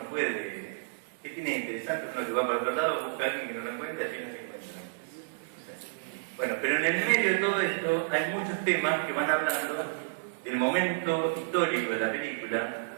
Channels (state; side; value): quieter; left; 36.9 dB